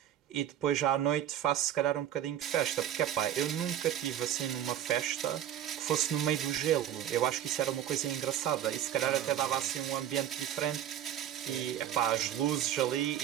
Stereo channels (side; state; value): left; quieter; 10.8 dB